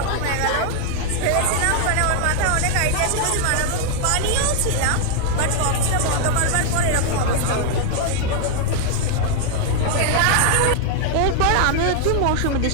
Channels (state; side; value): different; both; correlation 0.00